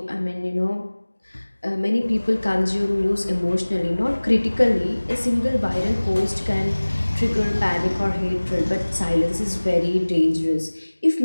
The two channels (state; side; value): inverted; both; correlation -1.00